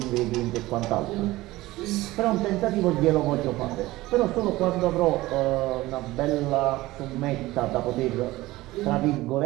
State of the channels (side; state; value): left; quieter; 18.3 dB